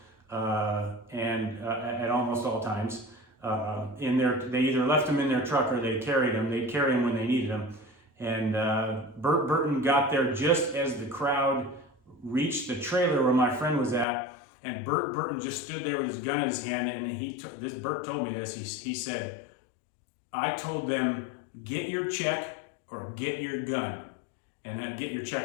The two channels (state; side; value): drops out; right; at 14.1 s